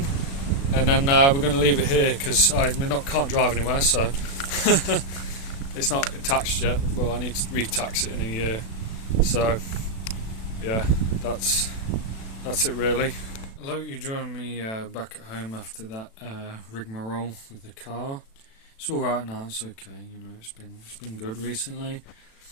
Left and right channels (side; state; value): right; late; 36 ms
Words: and then we're going to leave it here because can't drive anywhere, so it's not taxed yet, but I need to re-tax it in a year. So yeah, that's it really. I hope you join me back at home after that rigmarole with the car. It's all right now. It's okay. You know, it's been good recently.